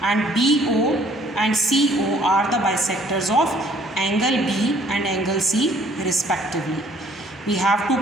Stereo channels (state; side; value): normal; both; correlation 0.59